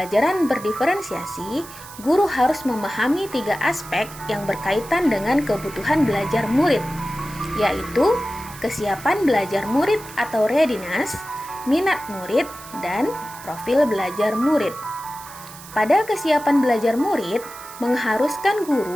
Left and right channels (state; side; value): noise; right; hiss, 17 dB below the sound